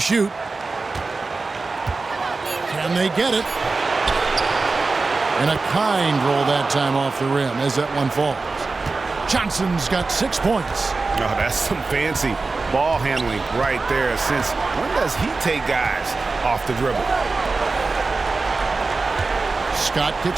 Can they get it? And a kind roll that time off the rim as that one falls. Johnson's got 6 points. Oh, that's some fancy ball handling right there. Since when does he take guys off the dribble? Scott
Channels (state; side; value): quieter; left; 3.9 dB